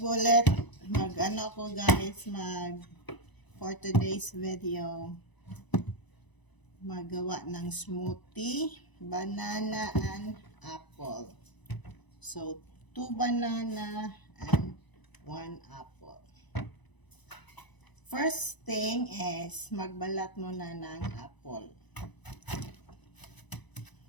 Mag-ano ako guys, for today's video. Magawa ng smoothie, banana and apple. So 2 banana and 1 apple. First thing is magbalat muna ng apple.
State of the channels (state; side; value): late; right; 1.0 ms